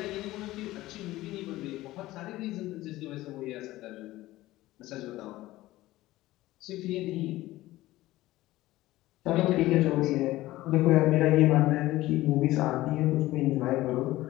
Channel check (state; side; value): quieter; right; 17.0 dB